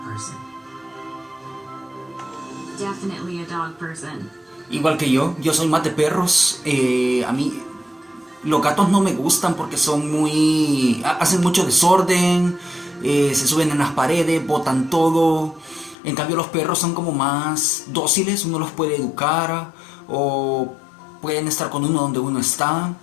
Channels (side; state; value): right; drops out; at 16.0 s